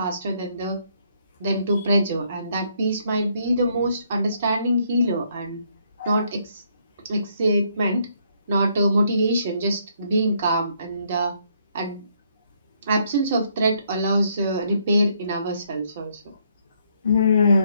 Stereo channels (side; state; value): both; inverted; correlation -0.70